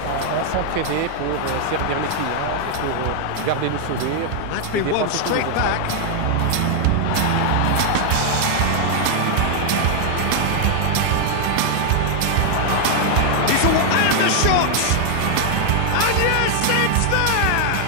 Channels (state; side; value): different; both; correlation 0.00